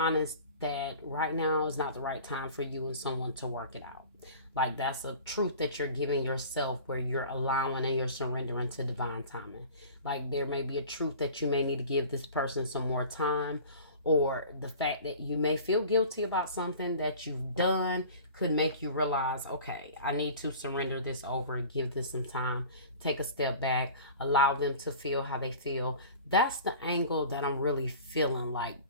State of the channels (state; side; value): inverted; both; correlation -0.41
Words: that right now is not the right time for you and someone to work it out. Like that's a truth that you're giving yourself where you're allowing and you're surrendering to divine timing. Like there may be a truth that you may need to give this person some more time, or the fact that you may feel guilty about something that you've done could make you realize, okay, I need to surrender this over and give this some time, take a step back, allow them to feel how they feel. That's the angle that I'm really feeling like